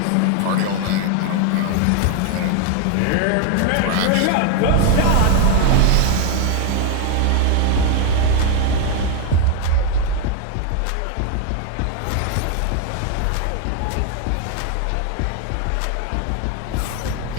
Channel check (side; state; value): both; different; correlation 0.01